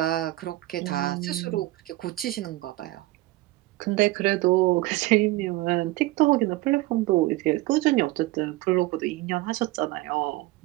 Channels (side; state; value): left; quieter; 18.5 dB